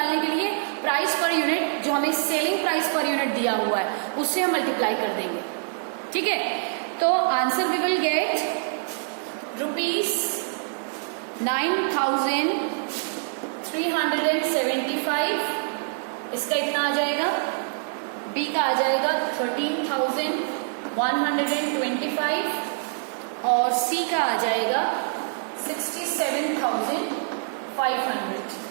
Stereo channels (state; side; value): silent; left; digital silence